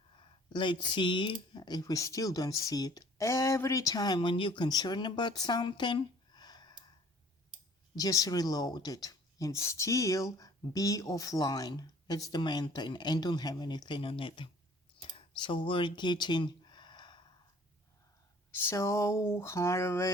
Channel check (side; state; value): both; normal; correlation 0.54